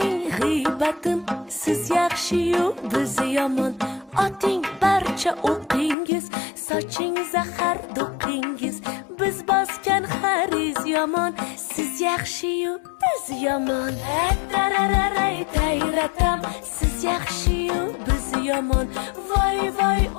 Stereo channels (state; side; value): drops out; right; at 6.0 s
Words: g'iybatim siz yaxshi-yu biz yomon oting barcha o'qingiz soching zahar do'qingiz biz bosgan xariz yomon siz yaxshi-yu biz yomon tarararay tayratam siz yaxshi-yu biz yomon voy voy